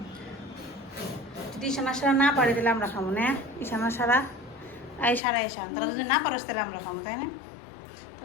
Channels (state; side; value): drops out; right; at 5.2 s